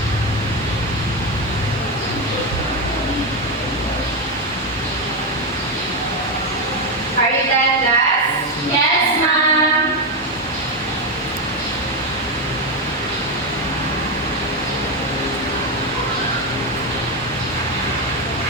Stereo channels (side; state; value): both; normal; correlation 0.09